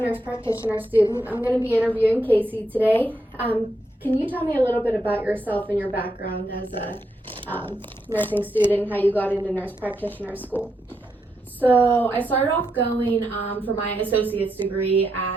practitioner student. I'm going to be interviewing Casey today. Can you tell me a little bit about yourself and your background as a nursing student, how you got into nurse practitioner school? So I started off going for my associate's degree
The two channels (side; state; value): both; normal; correlation 0.81